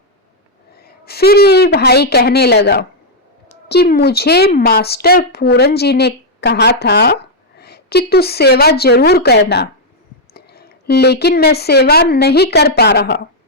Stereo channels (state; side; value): normal; both; correlation -0.03